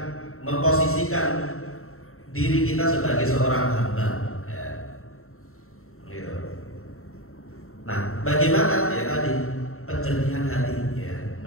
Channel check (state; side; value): late; right; 0.63 ms